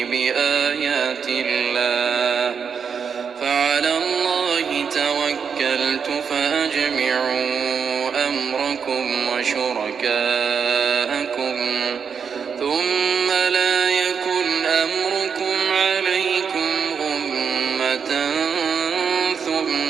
بآيات الله فعلى الله توكلت فأجمعوا أمركم وشركاءكم ثم لا يكن أمركم عليكم غمة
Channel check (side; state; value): left; quieter; 6.5 dB